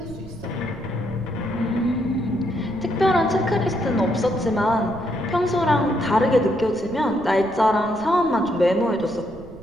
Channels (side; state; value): right; noise; rumble, 18 dB below the sound